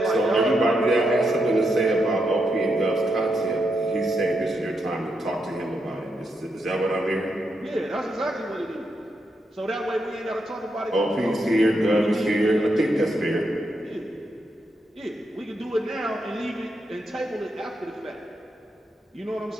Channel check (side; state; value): both; normal; correlation 0.82